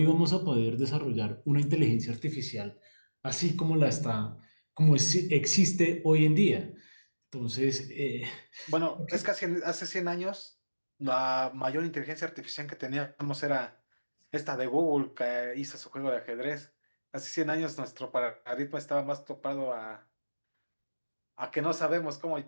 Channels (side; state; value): both; inverted; correlation -1.00